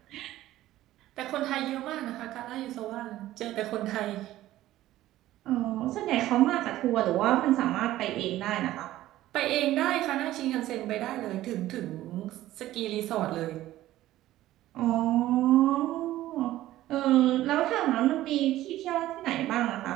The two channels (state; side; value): quieter; left; 14.8 dB